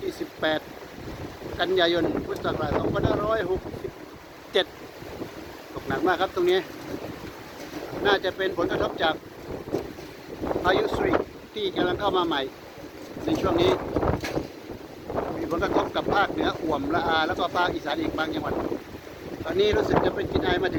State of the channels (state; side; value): identical; both; correlation 1.00